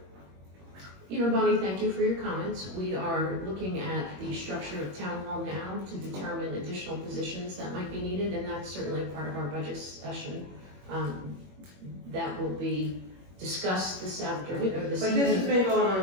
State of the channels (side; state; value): left; late; 21 ms